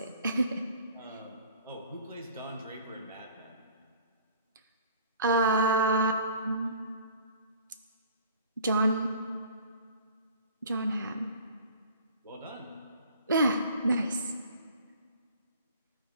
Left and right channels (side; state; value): both; inverted; correlation -0.48